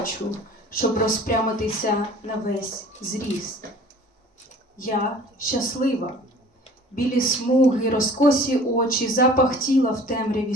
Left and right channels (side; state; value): both; normal; correlation 0.47